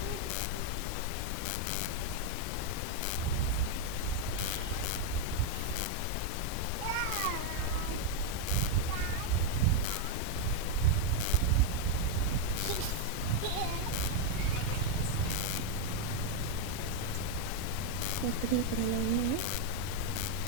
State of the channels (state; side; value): different; both; correlation 0.01